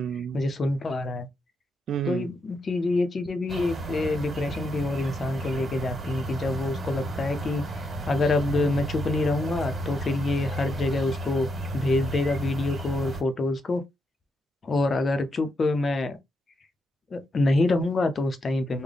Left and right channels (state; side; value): normal; both; correlation 0.81